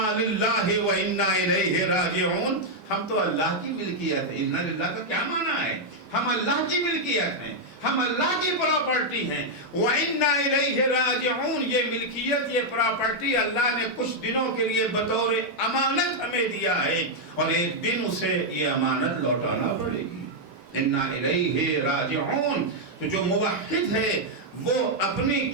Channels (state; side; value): normal; both; correlation -0.02